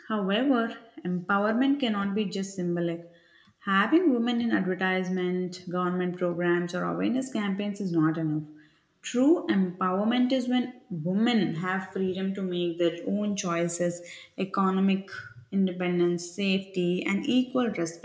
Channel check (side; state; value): both; identical; correlation 1.00